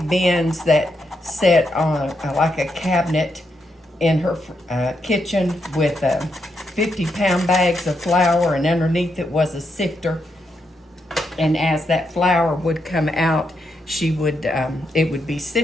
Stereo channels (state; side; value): normal; both; correlation 0.81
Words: bins that set on like a cabinet in her kitchen with 50-pound bags of flour, and underneath it was a sifter. And as that flour would come out, she would it would be